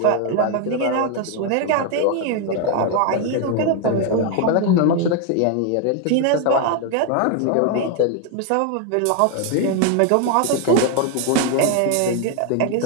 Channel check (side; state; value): both; different; correlation 0.01